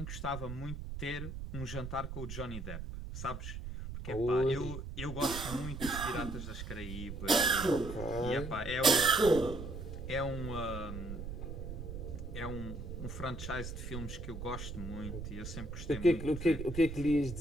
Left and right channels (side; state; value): right; noise; rumble, 7 dB below the sound